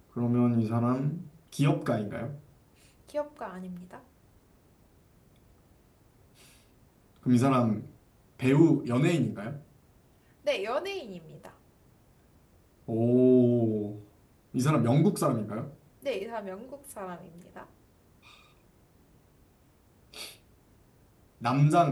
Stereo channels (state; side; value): identical; both; correlation 1.00